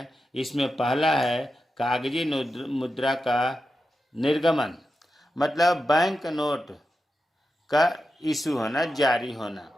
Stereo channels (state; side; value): normal; both; correlation 0.90